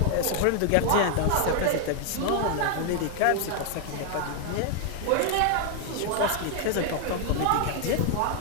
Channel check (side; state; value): both; different; correlation 0.00